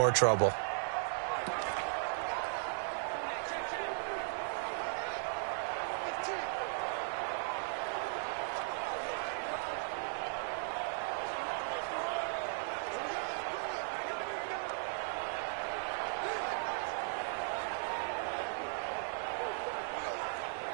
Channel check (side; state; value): left; silent; digital silence